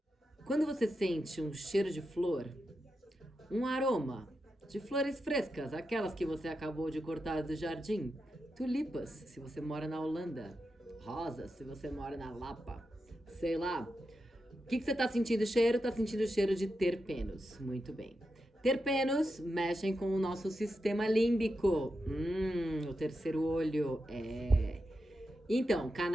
Quando você sente um cheiro de flor, um aroma de flores frescas, aquelas que você acabou de cortar do jardim, tulipas, se você mora na Holanda, rosas, se você mora na Lapa, sei lá. O que você tá sentindo cheiro? Tá sentindo cheiro de terpenos. Muito bem. Terpenos mexem com o nosso sistema límbico. O terceiro olho. Então,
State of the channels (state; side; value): normal; both; correlation 0.88